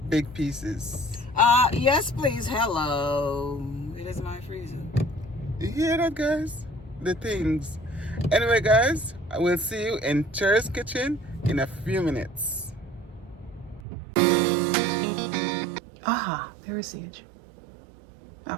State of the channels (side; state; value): left; drops out; at 13.8 s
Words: big pieces. Yes, please. Hello. It is my freezer. You hear that, guys? The things. Anyway, guys, I will see you in Cher's kitchen in a few minutes. Aha, there is Sage.